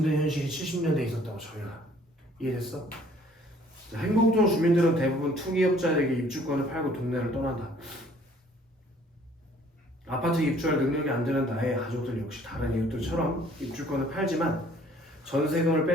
현실이 70년대에 있었다고 저희가 이해됐어? 행복동 주민들은 대부분 투기업자에게 입주권을 팔고 동네를 떠난다. 아파트 입주할 능력이 안 되는 나의 가족들 역시 다른 이웃들처럼 입주권을 팔지만 전세금을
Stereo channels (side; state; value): both; normal; correlation 0.57